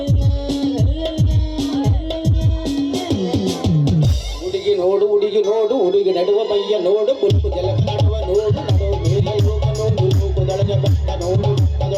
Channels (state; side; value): identical; both; correlation 1.00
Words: ಹುಡುಗಿ ನೋಡು ಹುಡುಗಿ ನೋಡು ಹುಡುಗಿ ನಡುವ ಮೈಯ ನೋಡು ಕುಲ್ಕು ಜಲಕಾಡುವ ನೋಡು ನಡುವ ಮೇಲೆ ಹೋಗ ನೋಡು ಮೂಗುದೊಳಗೆ ಬೆಟ್ಟ ನೋಡು